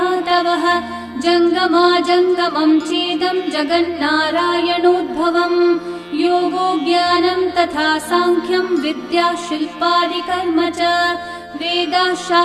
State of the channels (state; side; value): identical; both; correlation 1.00